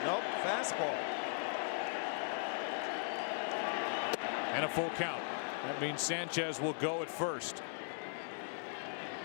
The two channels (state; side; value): silent; right; digital silence